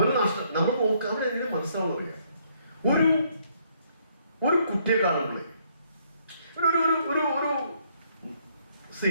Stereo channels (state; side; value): inverted; both; correlation -0.69